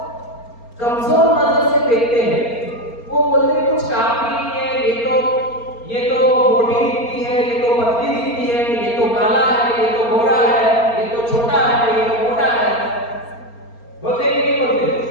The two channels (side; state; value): right; late; 4.3 ms